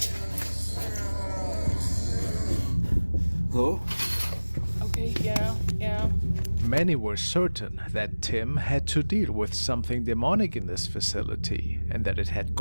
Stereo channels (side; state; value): both; inverted; correlation -1.00